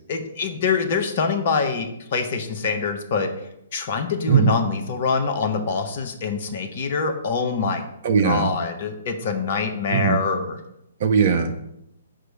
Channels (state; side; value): inverted; both; correlation -0.45